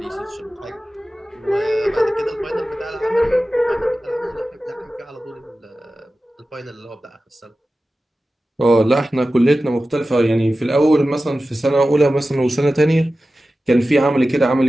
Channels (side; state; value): both; normal; correlation 0.95